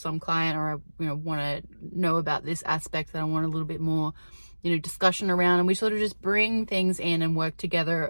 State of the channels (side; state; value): both; inverted; correlation -1.00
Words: client, or I, you know, want to know about this aspect that I want a little bit more, you know, discussion around, and we sort of just bring things in and work